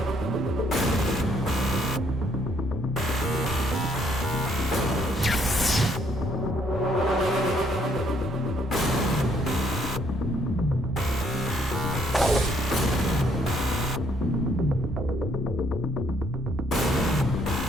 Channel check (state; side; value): normal; both; correlation 0.68